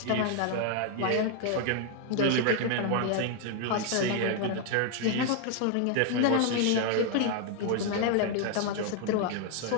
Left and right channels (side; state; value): both; different; correlation 0.00